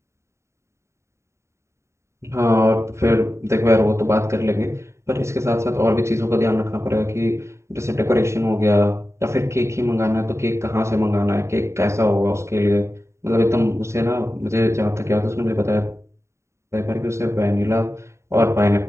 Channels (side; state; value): left; late; 0.14 ms